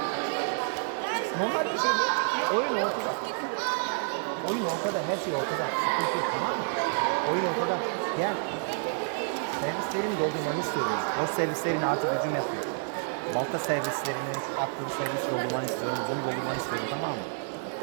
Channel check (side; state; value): left; silent; 58 dB below the other